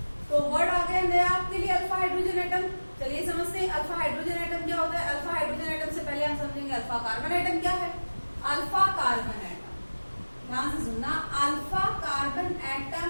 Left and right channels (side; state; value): both; inverted; correlation -1.00